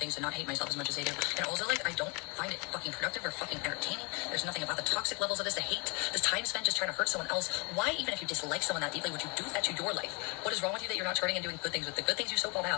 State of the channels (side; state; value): right; quieter; 30.8 dB